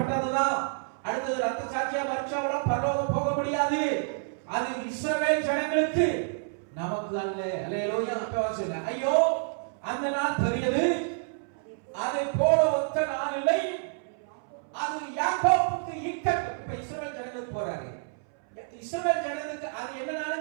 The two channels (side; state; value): left; silent; 59 dB below the other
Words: அடுத்தது ரத்த சாட்சியா மறிச்சவங்களும் பரலோகம் போக முடியாது. அது இஸ்ரவேல் ஜனங்களுக்கு, நமக்கு அல்ல. அல்லேலூயா. அப்ப ஐயோ, அந்த நாள் பெரியது, அதை போல ஒத்த நாள் இல்லை. அது யாக்கோபுக்கு இக்கட்டு. இப்ப இஸ்ரவேல் ஜனங்களுக்கு போறாரு, இஸ்ரவேல் ஜனங்களுக்கு அது என்ன